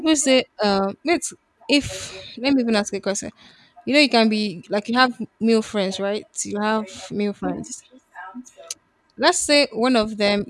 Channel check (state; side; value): identical; both; correlation 1.00